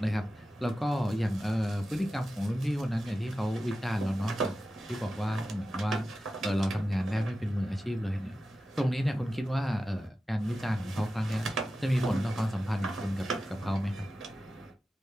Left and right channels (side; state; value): both; normal; correlation 0.93